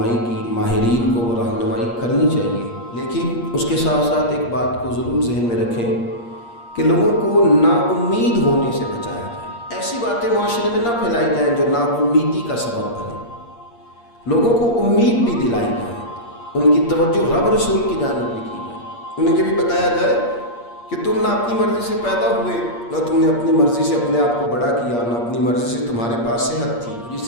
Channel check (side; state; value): right; late; 8.5 ms